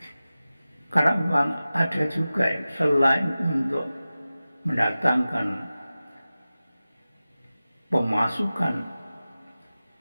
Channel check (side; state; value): both; inverted; correlation -0.96